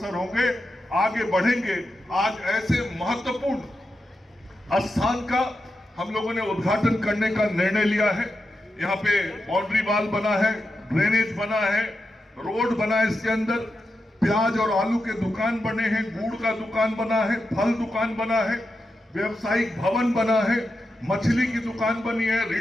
होंगे, आगे बढ़ेंगे। आज ऐसे महत्वपूर्ण स्थान का हम लोगों ने उद्घाटन करने का निर्णय लिया है। यहाँ पे बाउंड्री वॉल बना है, ड्रेनेज बना है, रोड बना है, इसके अंदर प्याज और आलू के दुकान बने हैं, गुड़ का दुकान बना है, फल दुकान बना है, व्यवसायिक भवन बना है, मछली की दुकान बनी है,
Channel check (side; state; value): both; normal; correlation 0.89